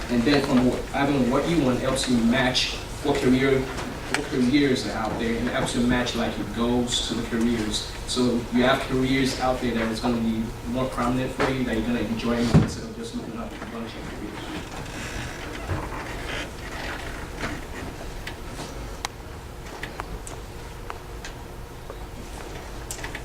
And then from having what you want, helps you match what careers are out there, and helps you match like your goals to the careers. So you have careers out there that is going to be more prominent for you, that you're going to enjoy more instead of just looking up a bunch of careers.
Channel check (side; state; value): both; identical; correlation 1.00